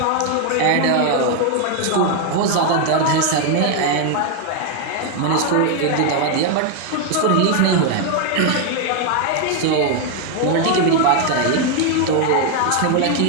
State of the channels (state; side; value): different; both; correlation 0.01